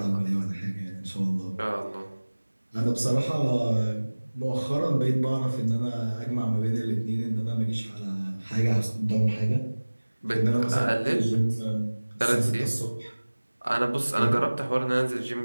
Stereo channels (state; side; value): inverted; both; correlation -1.00